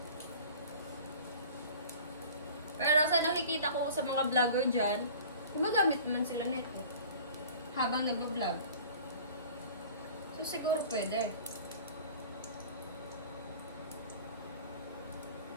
Pero sa nakikita ko sa mga vlogger dyan, gumagamit naman sila nito habang nag-vlog. So siguro pwede.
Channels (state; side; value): inverted; both; correlation -0.44